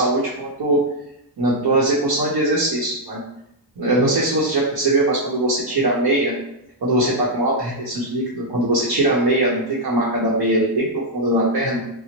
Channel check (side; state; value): both; normal; correlation -0.03